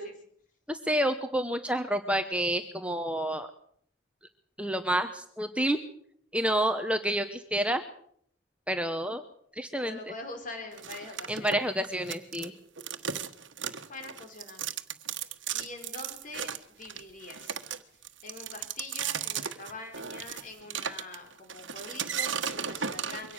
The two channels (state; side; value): normal; both; correlation 0.53